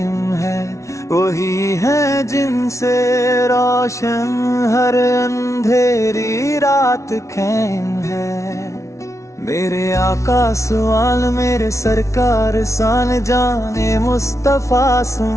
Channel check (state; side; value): late; right; 0.14 ms